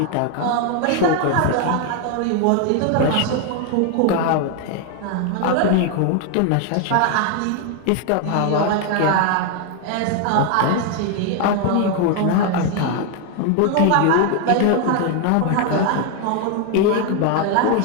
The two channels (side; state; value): both; different; correlation 0.01